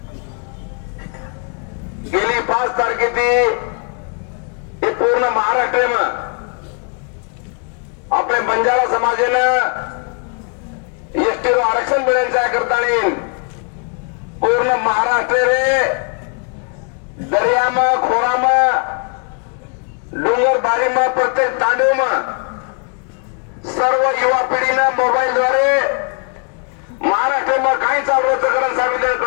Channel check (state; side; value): quieter; right; 39.3 dB